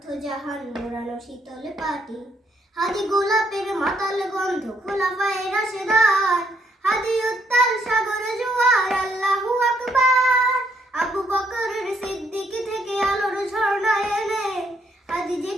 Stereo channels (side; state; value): both; normal; correlation 0.72